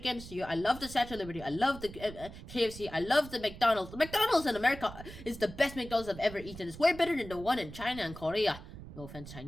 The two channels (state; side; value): noise; right; rumble, 14 dB below the sound